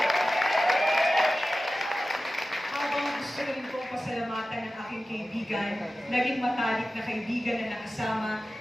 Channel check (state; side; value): normal; both; correlation 0.95